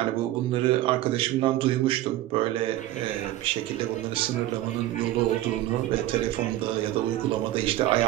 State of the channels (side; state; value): left; quieter; 14.8 dB